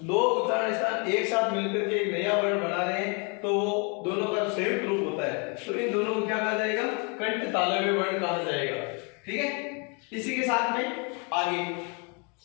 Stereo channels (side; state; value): right; quieter; 34.3 dB